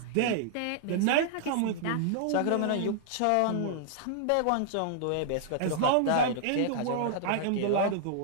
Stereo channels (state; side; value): different; both; correlation -0.01